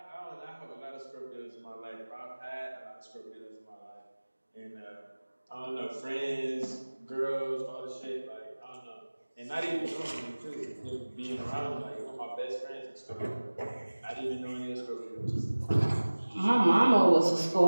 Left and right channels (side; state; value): both; inverted; correlation -1.00